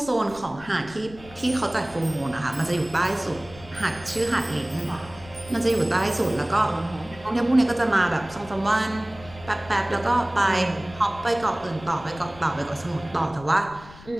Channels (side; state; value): left; noise; rumble, 19 dB below the sound